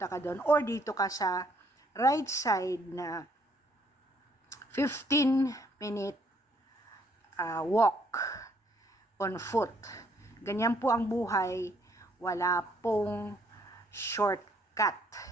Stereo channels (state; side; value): normal; both; correlation 0.67